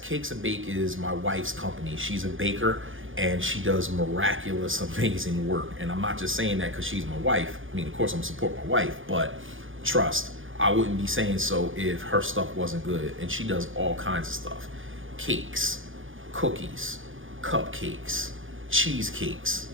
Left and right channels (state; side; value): late; left; 0.58 ms